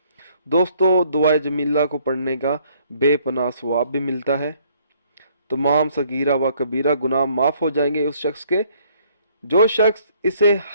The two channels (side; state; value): both; inverted; correlation -0.64